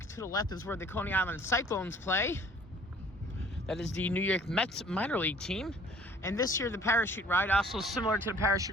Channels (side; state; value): both; normal; correlation 0.53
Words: to the left is where the Coney Island Cyclones play. That is the New York Mets minor league team. And this year, the parachute ride, also similar to the